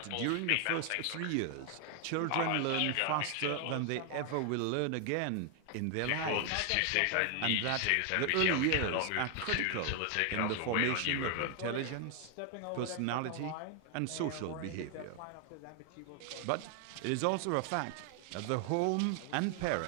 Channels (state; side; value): different; both; correlation 0.00